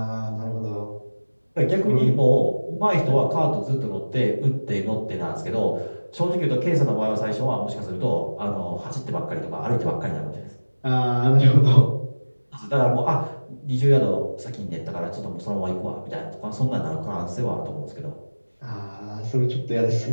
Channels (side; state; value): both; inverted; correlation -1.00